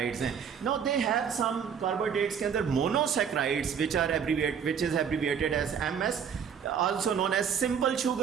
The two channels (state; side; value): quieter; left; 7.4 dB